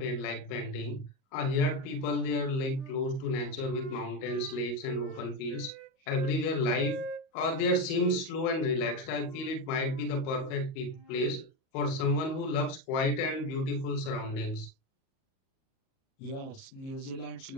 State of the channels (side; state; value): right; late; 38 ms